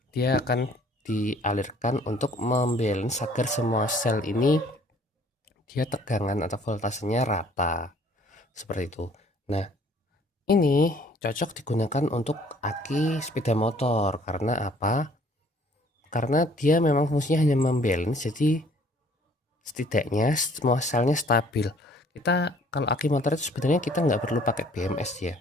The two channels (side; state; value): both; normal; correlation 0.57